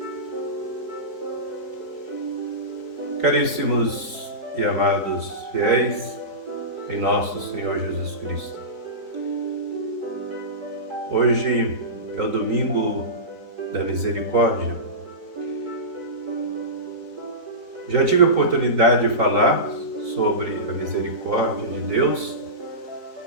Caríssimos e amados fiéis em nosso Senhor Jesus Cristo, hoje é o domingo da misericórdia. Já tive a oportunidade de falar sobre a misericórdia de Deus,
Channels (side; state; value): left; late; 4.4 ms